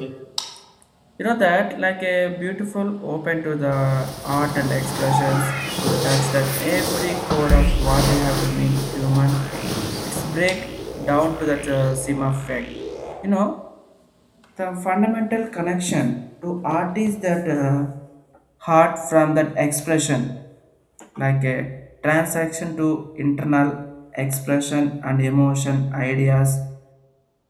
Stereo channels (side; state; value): both; identical; correlation 1.00